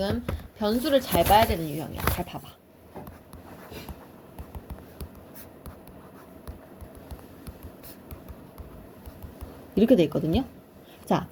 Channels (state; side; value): identical; both; correlation 1.00